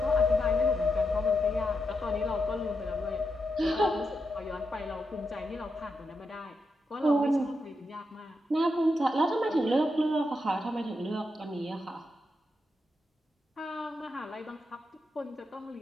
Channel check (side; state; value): both; normal; correlation 0.85